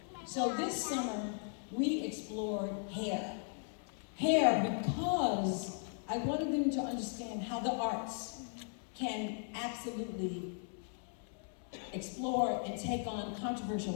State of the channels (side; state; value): right; silent; 53 dB below the other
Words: So this summer, we explored hair. Hair because I wanted them to understand how the arts can absolutely explore and take on